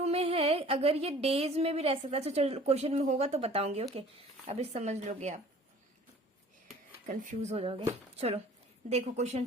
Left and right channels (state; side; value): normal; both; correlation 0.49